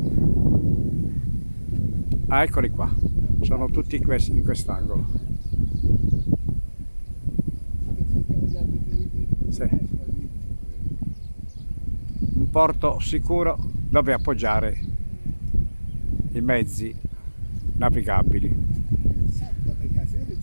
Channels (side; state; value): both; inverted; correlation -1.00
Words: Ah, eccoli qua, sono tutti in quest'angolo. Sì. Un porto sicuro dove appoggiare i mezzi navigabili. C'è